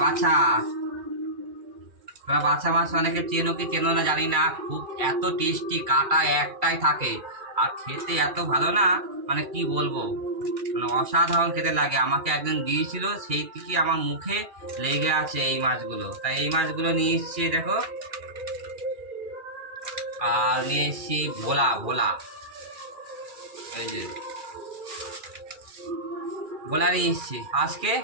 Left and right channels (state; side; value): late; left; 2.4 ms